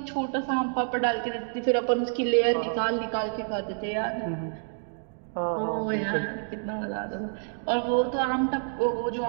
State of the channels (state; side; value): silent; left; digital silence